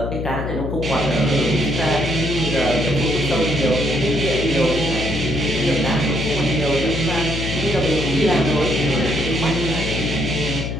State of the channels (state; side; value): noise; left; hum, 4 dB below the sound